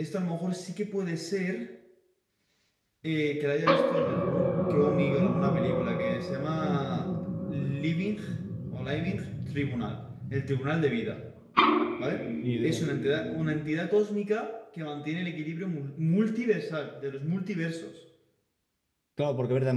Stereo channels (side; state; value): both; identical; correlation 1.00